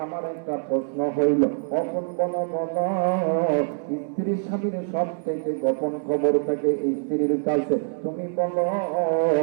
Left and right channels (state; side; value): silent; left; 62 dB below the other